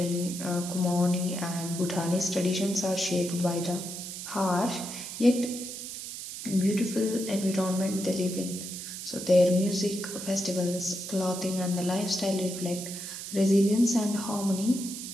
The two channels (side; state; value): right; noise; hiss, 8 dB below the sound